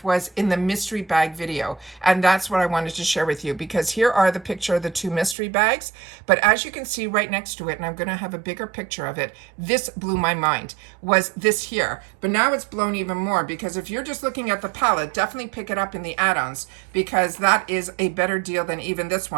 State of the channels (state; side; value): drops out; left; at 5.4 s